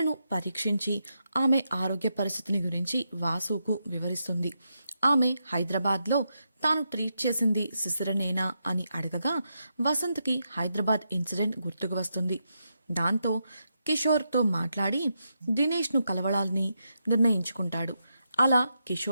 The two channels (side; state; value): both; inverted; correlation -0.84